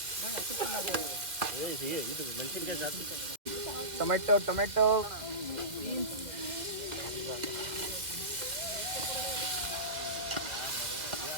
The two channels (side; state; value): left; late; 1.9 ms